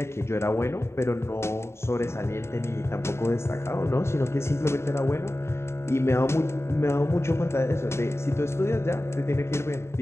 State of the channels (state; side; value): late; right; 0.13 ms